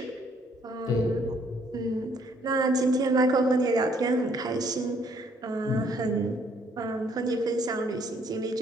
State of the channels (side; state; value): both; normal; correlation 0.65